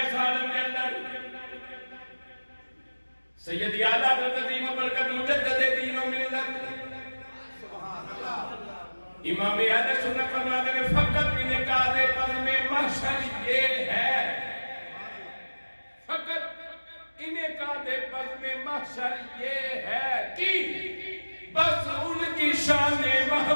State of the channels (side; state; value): both; inverted; correlation -1.00